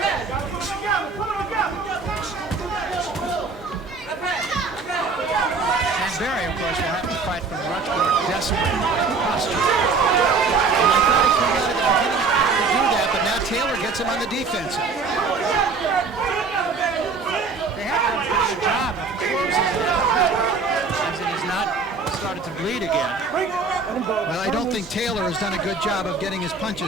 Barry, of course, will have to fight from a much more desperate posture. And I thought he came out at the beginning to do that, but now Taylor gets him on the defensive. They have done a pretty good job of closing that cut, as it has not started to bleed again. Well, I don't think Taylor has done a good job of getting his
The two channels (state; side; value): quieter; left; 4.3 dB